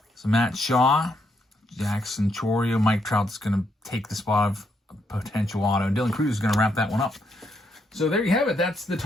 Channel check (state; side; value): normal; both; correlation 0.77